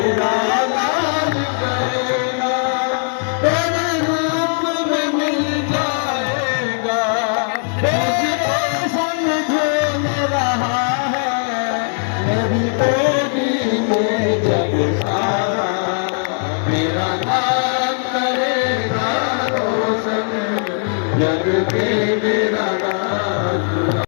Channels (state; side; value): silent; right; 67 dB below the other